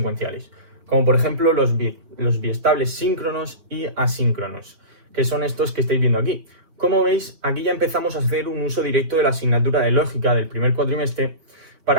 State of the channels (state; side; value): late; left; 4.5 ms